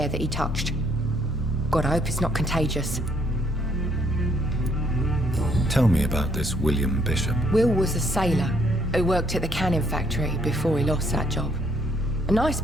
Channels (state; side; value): normal; both; correlation 0.69